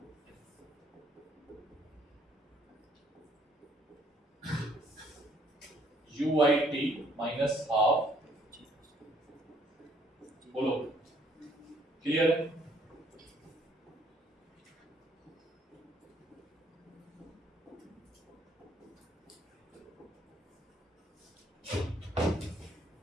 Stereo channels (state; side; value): normal; both; correlation 0.64